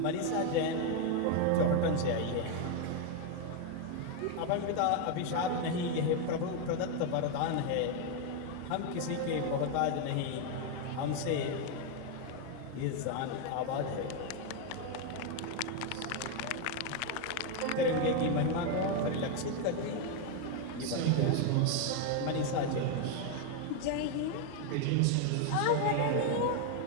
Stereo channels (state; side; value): different; both; correlation 0.01